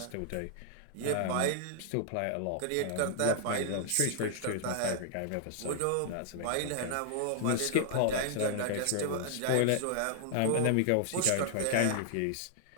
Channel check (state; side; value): different; both; correlation 0.00